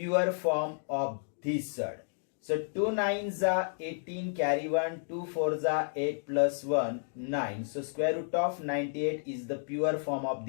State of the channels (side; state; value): right; silent; digital silence